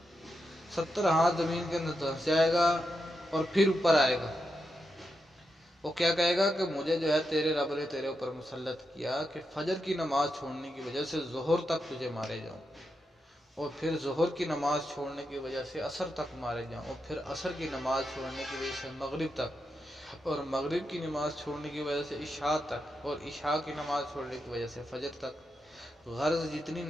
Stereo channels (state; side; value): normal; both; correlation 0.86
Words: 70 ہاتھ زمین کے اندر دھس جائے گا اور پھر اوپر آئے گا. وہ کیا کہے گا کہ مجھے جو ہے تیرے رب نے تیرے اوپر مسلط کیا کہ فجر کی نماز چھوڑنے کی وجہ سے ظہر تک تجھے مارے جاؤں، اور پھر ظہر کی نماز چھوڑنے کی وجہ سے عصر تک مارے جاؤں، اور پھر عصر کی نماز چھوڑنے کی وجہ سے مغرب تک، اور مغرب کی نماز چھوڑنے کی وجہ سے عشاء تک، اور عشاء کی نماز چھوڑنے کی وجہ سے فجر تک. غرض جتنی